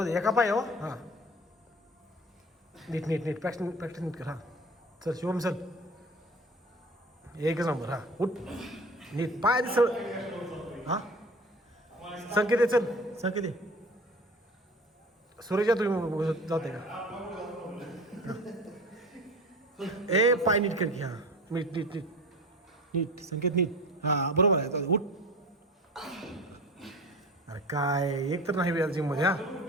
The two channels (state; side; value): normal; both; correlation 0.37